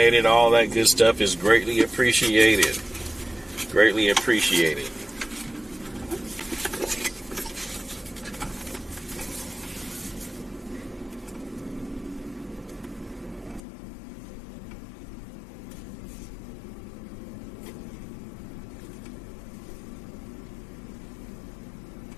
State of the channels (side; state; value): right; drops out; at 13.6 s